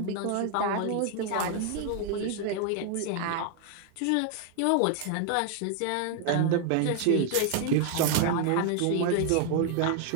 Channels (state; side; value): different; both; correlation 0.00